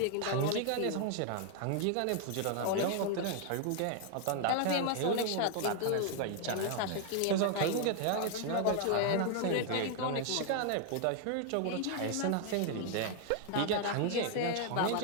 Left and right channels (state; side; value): different; both; correlation 0.00